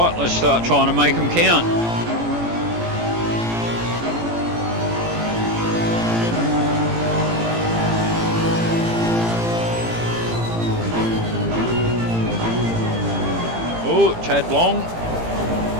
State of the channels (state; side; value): late; left; 18 ms